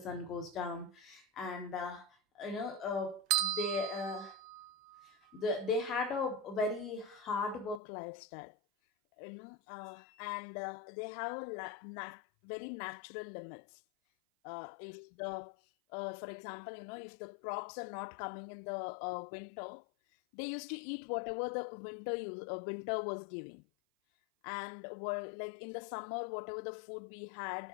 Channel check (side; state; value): right; drops out; at 7.8 s